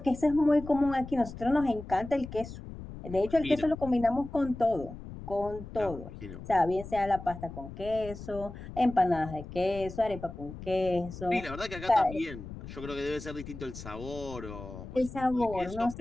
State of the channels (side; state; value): left; noise; rumble, 12 dB below the sound